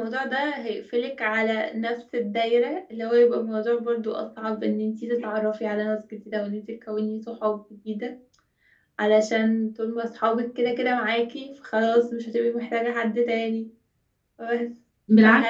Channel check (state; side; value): identical; both; correlation 1.00